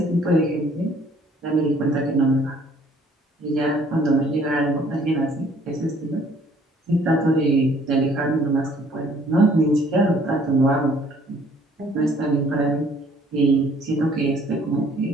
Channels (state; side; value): normal; both; correlation 0.59